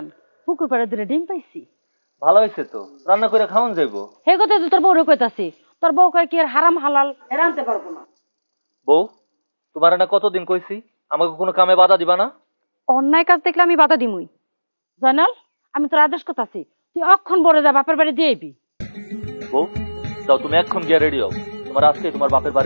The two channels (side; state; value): both; inverted; correlation -1.00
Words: পুকুর পাড়ে দুটো ডিম পাইছি। ভালো হইছে তো, রান্না করে খাওয়ান যাইবো। হে কথা তো তোর বউরে কইতাছি, তোর বউ কয় কি আর হারাম হালাল রানতে পারবো না। বউ, তোমার না কতদিন কইছি আমাকে কোনো কামে বাধা দিবা না? অন্যায় কাজ দেখলে আমি বাধা দিমুই। জানাল, আমি তোর আদেশ করতাছি, তুই অক্ষণ বড় যা বাপের বাড়ি দিয়ে আইবি। বউ, যাও তুমি এখন গিয়ে রেডি হও, তোমার আজকে তোমার বাপের